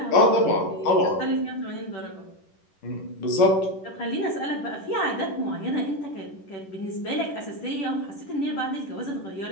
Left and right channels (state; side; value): late; right; 10 ms